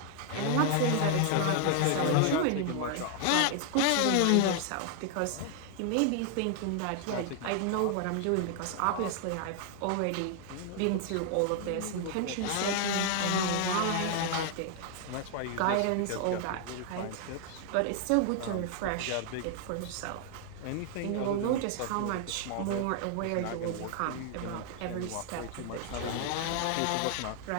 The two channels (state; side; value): different; both; correlation 0.00